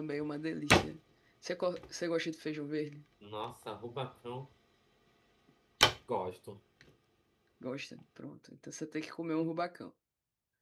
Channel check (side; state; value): both; identical; correlation 1.00